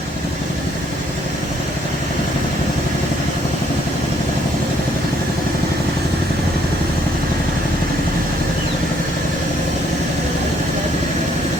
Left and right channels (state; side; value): normal; both; correlation 0.67